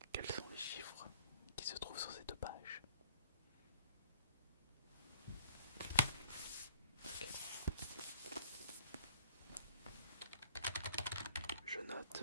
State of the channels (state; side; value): inverted; both; correlation -0.56